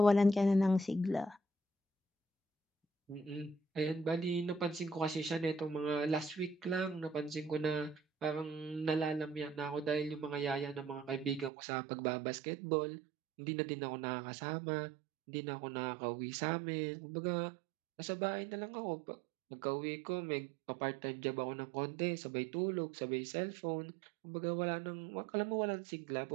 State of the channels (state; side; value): drops out; left; at 11.5 s